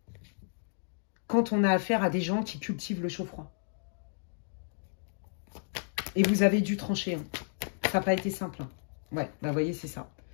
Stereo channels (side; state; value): right; silent; digital silence